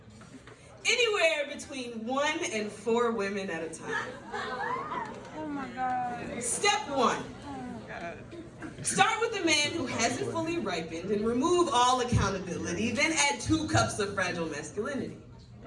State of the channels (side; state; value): both; identical; correlation 1.00